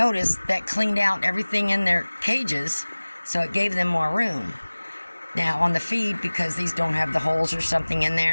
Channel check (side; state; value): both; inverted; correlation -1.00